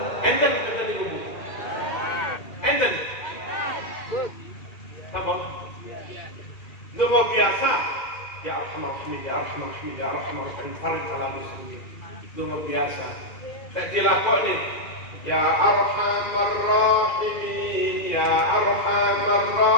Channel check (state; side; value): late; right; 2.3 ms